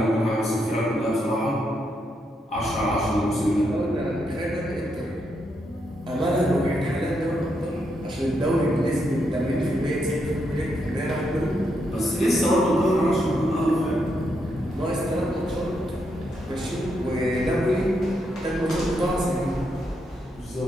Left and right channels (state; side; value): normal; both; correlation 0.80